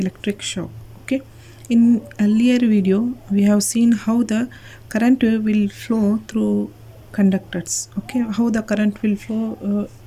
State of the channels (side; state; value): both; identical; correlation 1.00